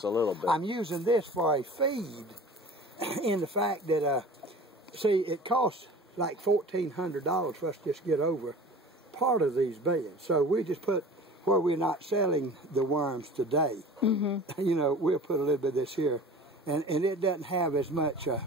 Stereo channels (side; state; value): both; normal; correlation 0.41